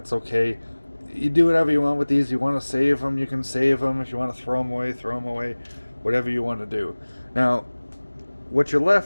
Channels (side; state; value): both; inverted; correlation -1.00